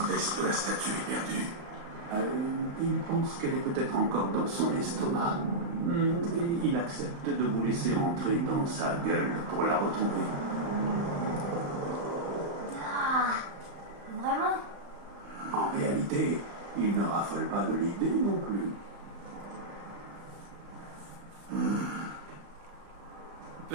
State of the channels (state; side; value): late; left; 35 ms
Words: Est-ce que la statue est perdue? Il pense qu'elle est peut-être encore dans son estomac. Et il accepte de vous laisser entrer dans sa gueule pour la retrouver. Ah, vraiment? En réalité, il ne raffole pas de l'idée non plus.